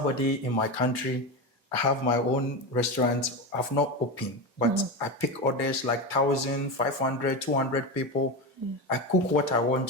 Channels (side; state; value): both; normal; correlation 0.18